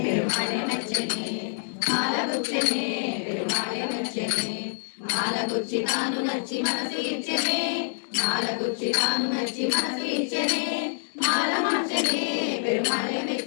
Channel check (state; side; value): silent; right; 61 dB below the other